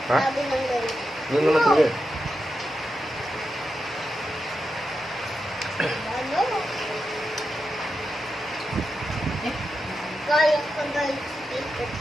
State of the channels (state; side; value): normal; both; correlation 0.88